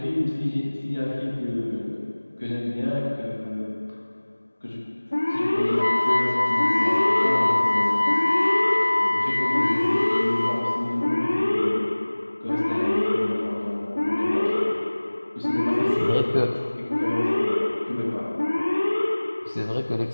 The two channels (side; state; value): both; inverted; correlation -1.00